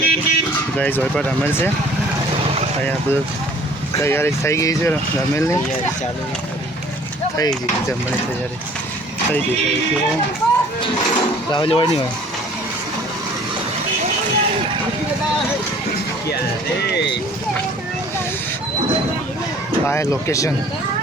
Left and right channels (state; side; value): normal; both; correlation 0.52